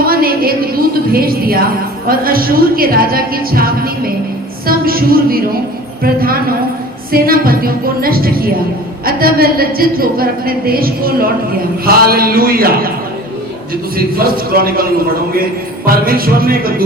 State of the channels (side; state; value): both; normal; correlation 0.42